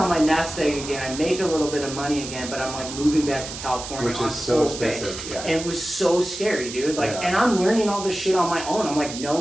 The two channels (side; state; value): right; noise; hiss, 9 dB below the sound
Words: my nest egg again. I make a little bit of money again, but I'm like moving back to California, which is so expensive. And it was so scary, dude. Like, and I'm learning all this shit on my own. I'm like, no